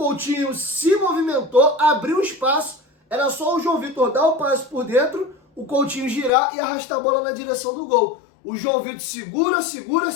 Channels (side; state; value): right; drops out; at 6.3 s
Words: se movimentou, abriu espaço, era só o João Vitor dar o passe por dentro, o Coutinho girar e arrastar a bola na direção do gol. O João Vitor